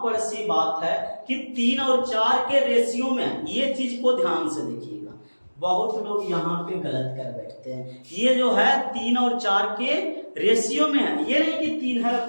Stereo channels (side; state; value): both; inverted; correlation -1.00